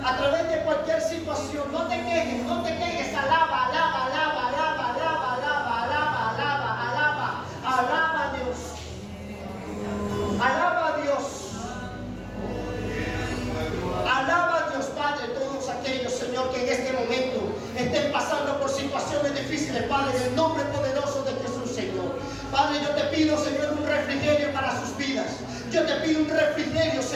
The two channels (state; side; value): identical; both; correlation 1.00